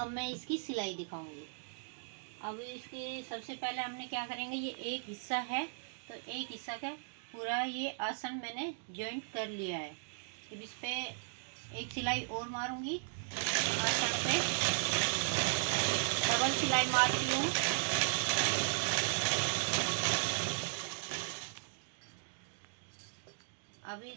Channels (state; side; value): silent; left; digital silence